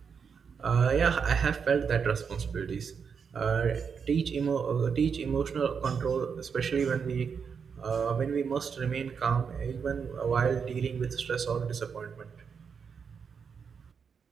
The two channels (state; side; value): quieter; left; 6.3 dB